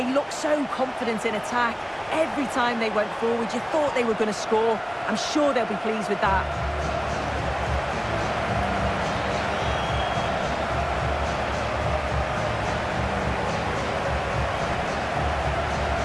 looked so confident in attack. Every time they went forward, you thought they were going to score. I'm sure they'll be pleased with that.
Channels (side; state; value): both; identical; correlation 1.00